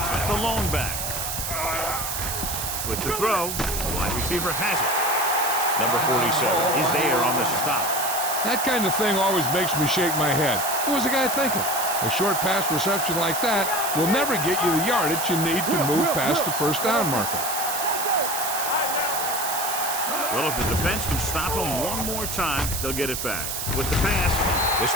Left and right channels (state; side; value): noise; right; hiss, 3 dB below the sound